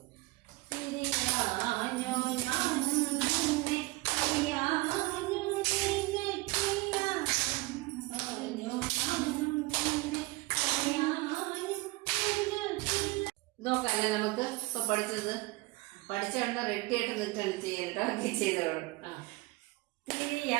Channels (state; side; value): quieter; left; 22.1 dB